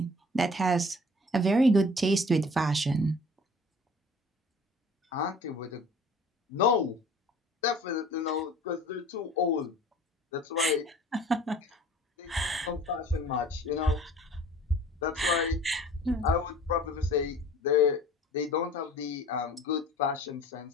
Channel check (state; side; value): normal; both; correlation 0.47